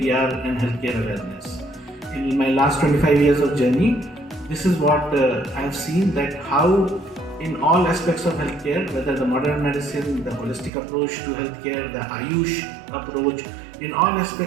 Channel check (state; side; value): drops out; left; at 10.7 s